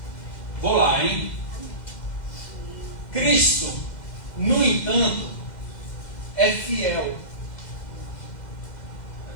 Vou lá, hein? Cristo, no entanto, é fiel.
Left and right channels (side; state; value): right; late; 2.0 ms